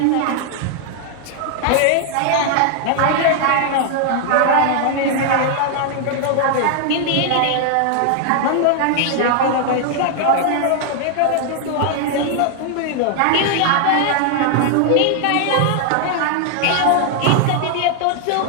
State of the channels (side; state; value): both; different; correlation 0.00